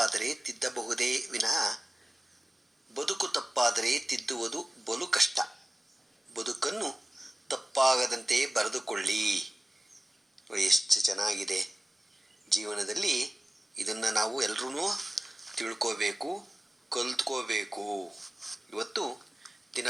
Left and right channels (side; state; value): both; normal; correlation 0.97